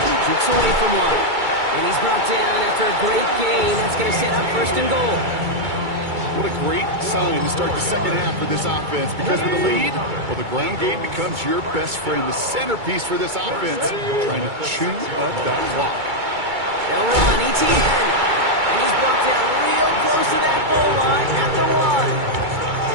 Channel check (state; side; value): late; left; 2.3 ms